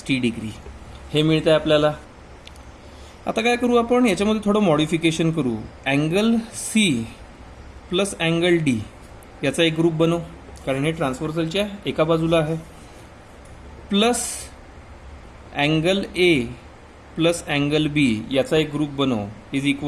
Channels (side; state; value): both; identical; correlation 1.00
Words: degree. हे मिळतं आहे आपल्याला. आता काय करू आपण? याच्यामध्ये थोडं मॉडिफिकेशन करू. Angle C plus angle D याचा एक ग्रुप बनवू, कारण हे ट्रान्सव्हर्सलच्या एका बाजूला आहे. Plus angle A plus angle B याचा एक ग्रुप बनवू इज